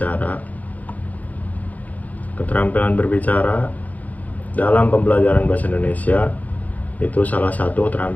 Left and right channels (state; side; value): late; right; 0.077 ms